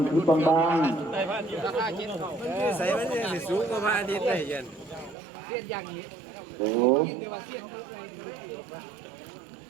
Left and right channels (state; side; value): drops out; left; at 5.2 s